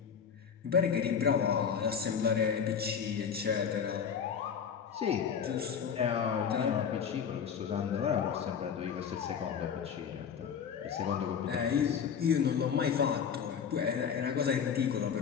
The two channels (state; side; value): quieter; right; 7.2 dB